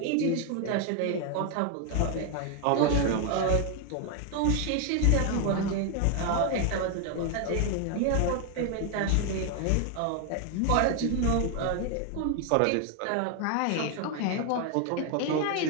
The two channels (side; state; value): both; different; correlation 0.01